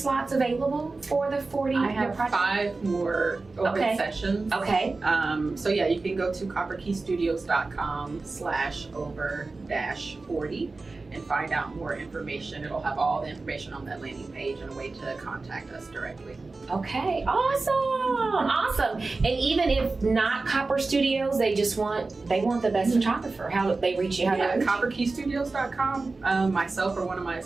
available for the 40 I your have project? 5 more open Okay. sessions. Okay. So yeah, you can go to copperkeystudios.com/over-40 and find out more information. It'll have all the information on that landing page and a way to contact us directly. Okay. Awesome. Awesome. And even if not Copper Studios, they want the best photographer. How do they reach you? How do Yeah, they reach you? copperkeystudios.com. Myself or one of my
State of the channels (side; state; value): left; quieter; 3.7 dB